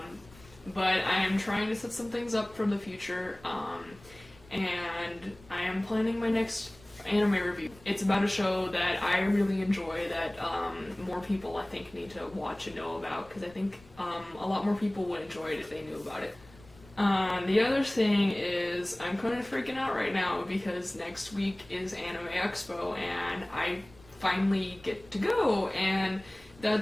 But I am trying to set some things up for the future, and I am planning my next anime review. It's about a show that I really enjoy that more people, I think, need to watch and know about, because I think a lot more people would enjoy it if they knew about it. The other thing is, I'm kind of freaking out right now because next week is Anime Expo and I finally get to go, and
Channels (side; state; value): left; noise; rumble, 24 dB below the sound